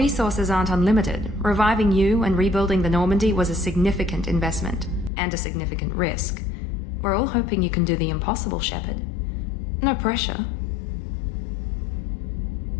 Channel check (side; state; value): right; drops out; at 5.1 s